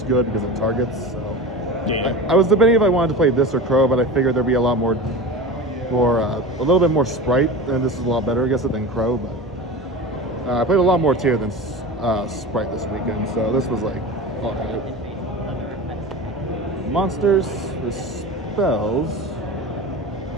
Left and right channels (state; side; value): normal; both; correlation 0.30